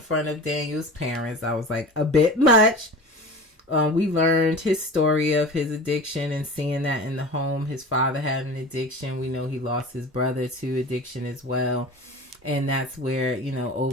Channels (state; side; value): normal; both; correlation 0.35